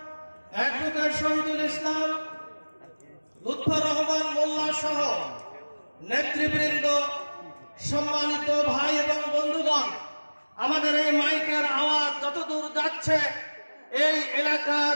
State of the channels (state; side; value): inverted; both; correlation -1.00